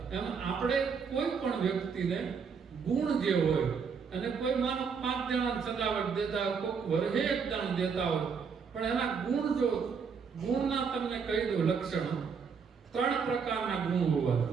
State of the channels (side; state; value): left; quieter; 6.0 dB